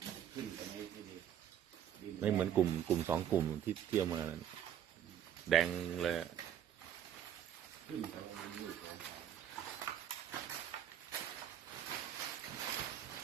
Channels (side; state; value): left; quieter; 9.8 dB